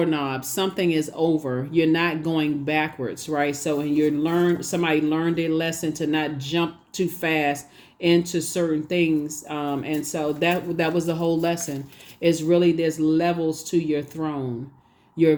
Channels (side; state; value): both; identical; correlation 1.00